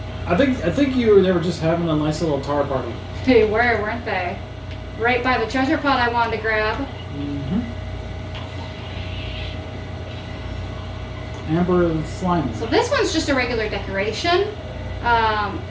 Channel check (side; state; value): both; identical; correlation 1.00